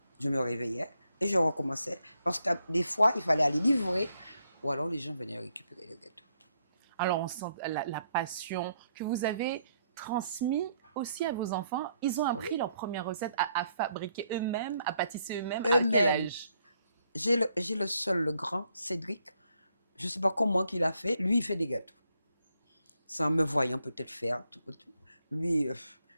je me réveillais et je recommençais. Parce que des fois, il fallait aller livrer ou alors les gens venaient récupérer les gâteaux. Alors, on sent la passion que vous avez transmise aussi à vos enfants. Ils ont appris leur première recette à fabriquer eux-mêmes, à pâtisser eux-mêmes. À quel âge? J'ai le seul, le grand, Cédric. Je ne sais pas comment qu'il a fait. Lui, il fait des gâteaux. Sans me voyant peut-être faire. Tout. Lui,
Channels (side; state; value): both; inverted; correlation -0.74